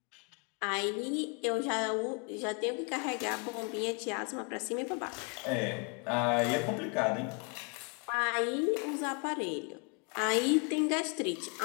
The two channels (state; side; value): quieter; right; 35.8 dB